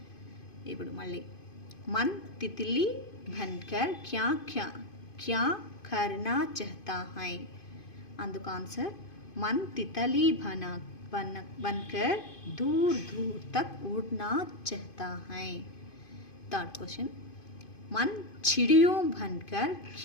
ఇప్పుడు మళ్ళీ मन तितली बनकर क्या क्या क्या करना चाहता है, అందుకు ఆన్సర్ मन तितली बनकर दूर दूर तक उड़ना चाहता है. थर्ड क्वेश्चन मन चिड़ियों बनकर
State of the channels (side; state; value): right; late; 2.5 ms